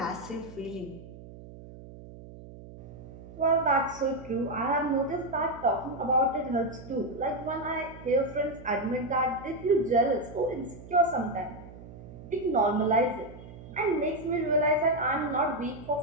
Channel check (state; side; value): noise; right; hum, 16 dB below the sound